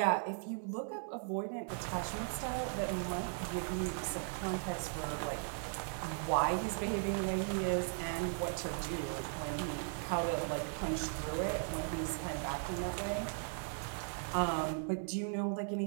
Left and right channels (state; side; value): silent; left; 53 dB below the other